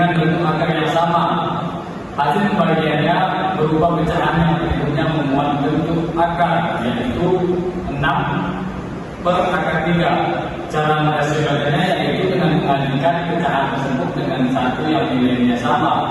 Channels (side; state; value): both; identical; correlation 1.00